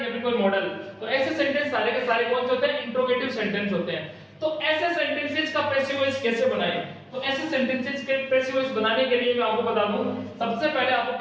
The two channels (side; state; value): both; identical; correlation 1.00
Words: फिर कोई मॉडल, तो ऐसे सेंटेंस सारे के सारे कौन से होते हैं, इंट्रोगेटिव सेंटेंस होते हैं। तो ऐसे सेंटेंसेस का पैसिव वॉइस कैसे बनाएं? तो ऐसे सेंटेंसेस के पैसिव वॉइस बनाने के लिए मैं आपको बता दूं, सबसे पहले आपको